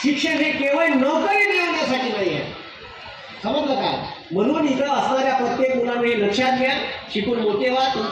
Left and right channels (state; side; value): identical; both; correlation 1.00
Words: शिक्षण हे केवळ नोकरी मिळवण्यासाठी नाही आहे. समजलं का? म्हणून इथं असणाऱ्या प्रत्येक मुलांना हे लक्षात घ्या. शिकून मोठे व्हा.